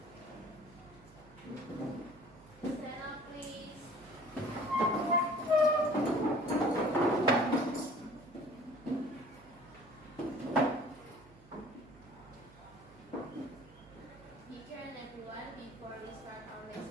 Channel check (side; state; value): right; noise; hum, 23 dB below the sound